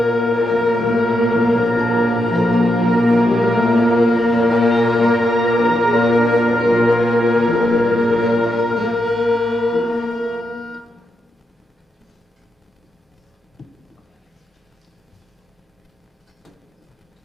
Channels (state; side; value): normal; both; correlation 0.84